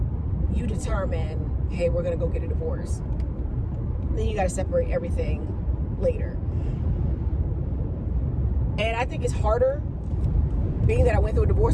you determine, hey, we're going to go get a divorce? Then you got to separate everything later. And I think it's harder, being that I went through a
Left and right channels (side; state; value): both; identical; correlation 1.00